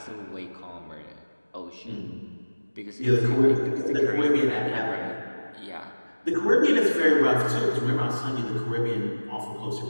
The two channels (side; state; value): both; inverted; correlation -1.00